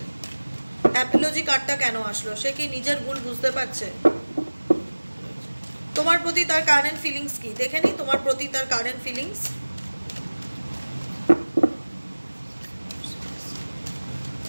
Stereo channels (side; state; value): both; inverted; correlation -1.00